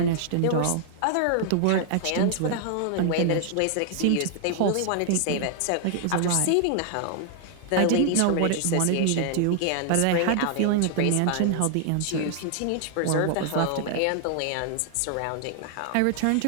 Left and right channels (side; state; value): both; different; correlation 0.00